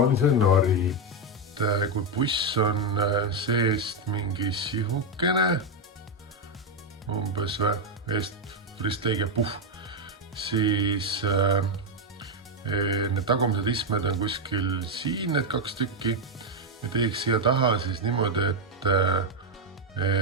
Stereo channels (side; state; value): both; normal; correlation 0.04